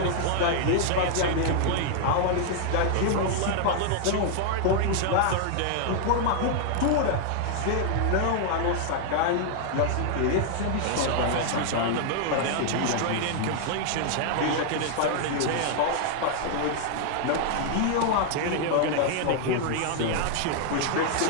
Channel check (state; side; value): different; both; correlation 0.00